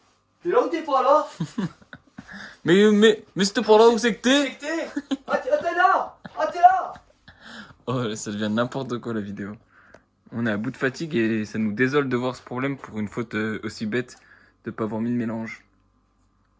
T'es là ou t'es pas là? Mais c'était pour là où c'est que t'es? C'est que t'es? Ah, t'es là! Ah, t'es là! Oh, ça devient n'importe quoi la vidéo. On est à bout de fatigue et ça nous désole de voir ce problème pour une faute aussi bête de pas avoir mis le mélange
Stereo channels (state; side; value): identical; both; correlation 1.00